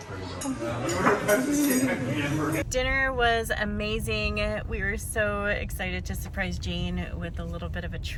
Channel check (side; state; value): both; identical; correlation 1.00